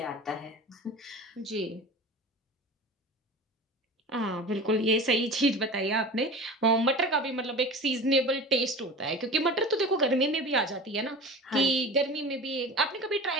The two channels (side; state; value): both; normal; correlation 0.33